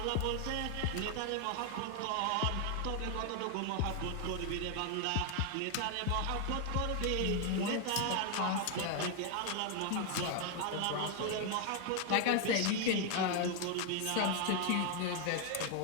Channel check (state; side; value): different; both; correlation 0.01